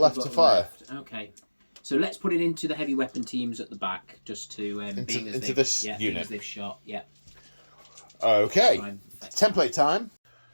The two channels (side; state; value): both; inverted; correlation -1.00